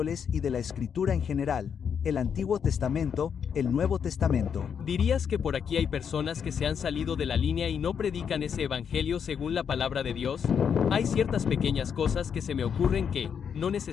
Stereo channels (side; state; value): right; quieter; 7.4 dB